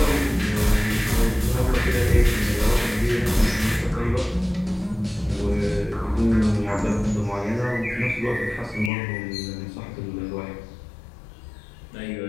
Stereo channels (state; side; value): drops out; right; at 8.9 s